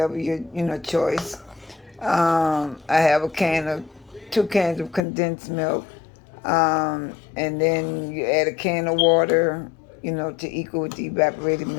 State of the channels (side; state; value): right; drops out; at 5.0 s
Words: your choice. I have 2 cans of condensed milk, and then you add a can of water, to equal with the evaporated